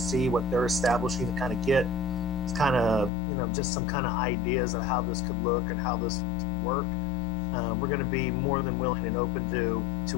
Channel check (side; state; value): right; drops out; at 3.1 s